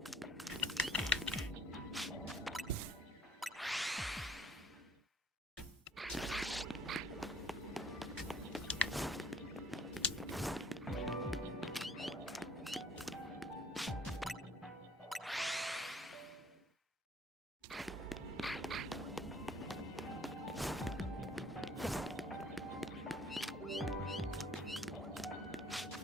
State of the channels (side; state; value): both; normal; correlation 0.57